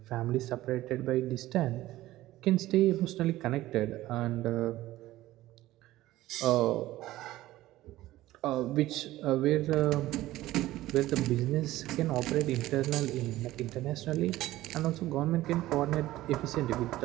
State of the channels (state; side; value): quieter; left; 16.1 dB